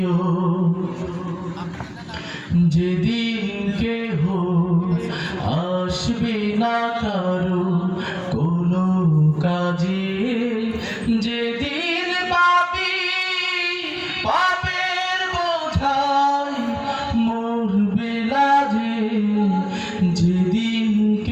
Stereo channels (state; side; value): identical; both; correlation 1.00